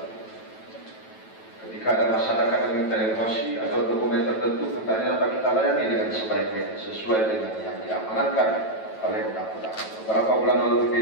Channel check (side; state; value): right; late; 9.1 ms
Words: Ketika ada masyarakat yang meminta informasi atau dokumen tertentu, hendaknya dapat kita layani dengan sebaik-baiknya sesuai dengan yang diamanatkan oleh undang-undang. Beberapa bulan lalu